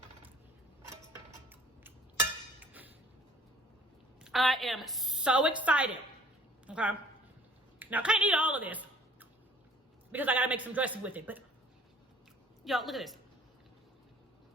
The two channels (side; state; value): both; normal; correlation 0.53